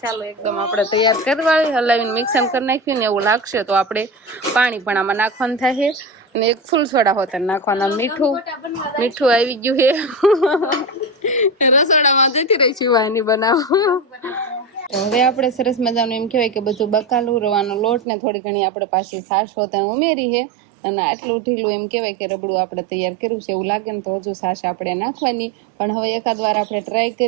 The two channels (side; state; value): left; drops out; at 18.1 s